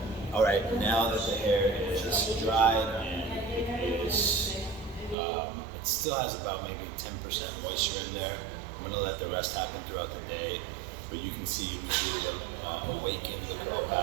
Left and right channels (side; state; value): left; drops out; at 5.2 s